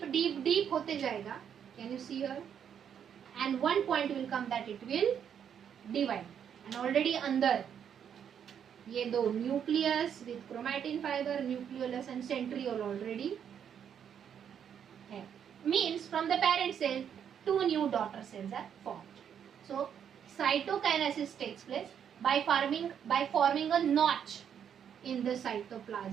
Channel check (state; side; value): quieter; left; 8.4 dB